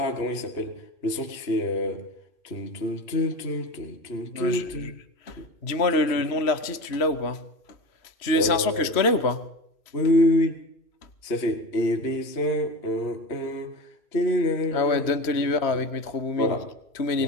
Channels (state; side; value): late; right; 3.0 ms